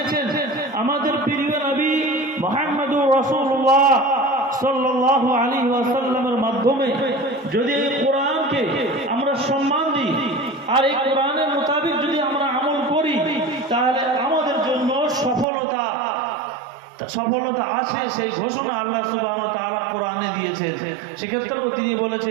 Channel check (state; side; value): drops out; left; at 15.5 s